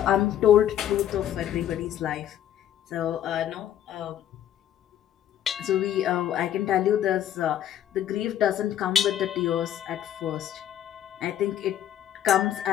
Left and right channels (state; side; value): quieter; right; 10.9 dB